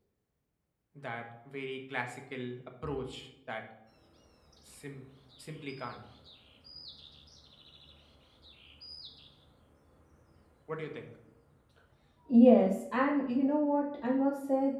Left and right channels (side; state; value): both; identical; correlation 1.00